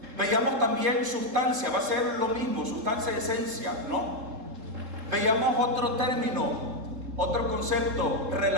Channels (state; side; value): late; left; 3.7 ms